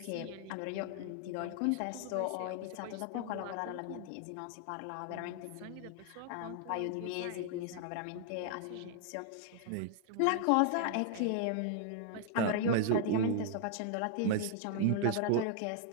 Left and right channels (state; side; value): different; both; correlation 0.00